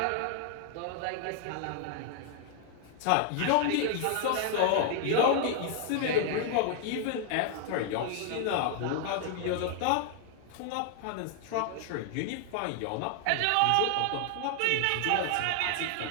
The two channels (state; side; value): different; both; correlation 0.00